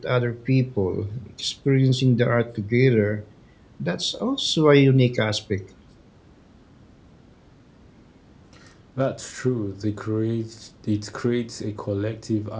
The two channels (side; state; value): both; identical; correlation 1.00